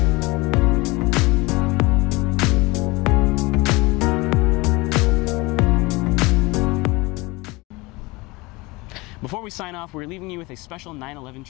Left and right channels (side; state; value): right; quieter; 23.5 dB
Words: we sign off, we're leaving you with a special 9/11